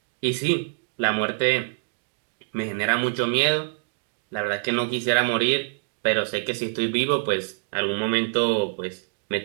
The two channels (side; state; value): left; silent; digital silence